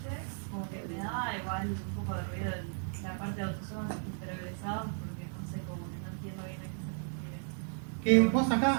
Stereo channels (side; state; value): left; silent; 55 dB below the other